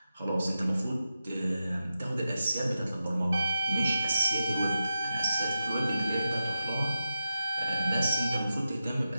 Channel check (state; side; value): inverted; both; correlation -0.90